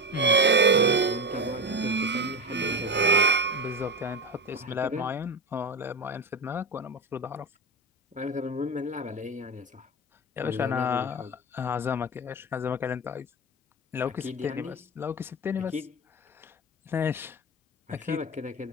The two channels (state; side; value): normal; both; correlation 0.18